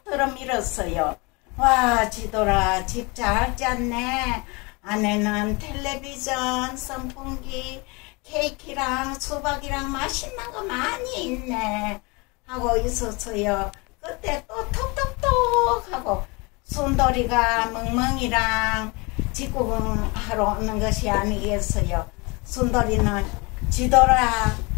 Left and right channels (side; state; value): right; quieter; 27.6 dB